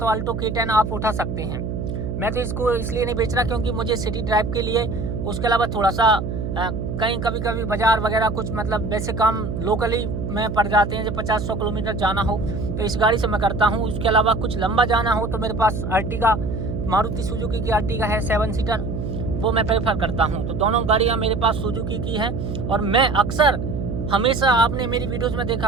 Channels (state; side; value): noise; right; hum, 4 dB below the sound